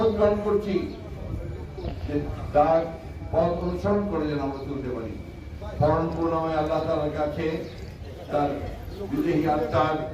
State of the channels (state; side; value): identical; both; correlation 1.00